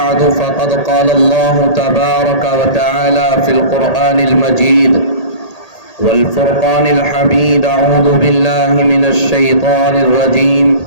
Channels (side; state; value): right; late; 1.8 ms